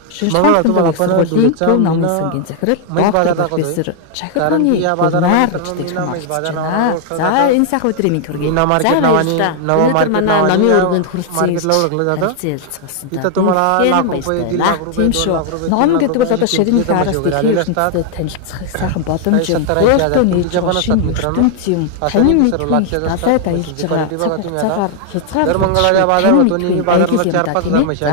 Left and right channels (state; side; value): different; both; correlation 0.00